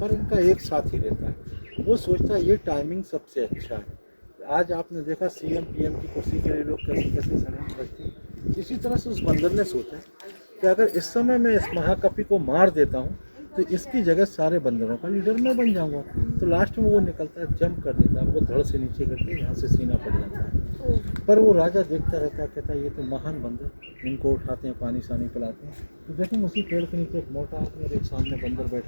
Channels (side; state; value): both; inverted; correlation -1.00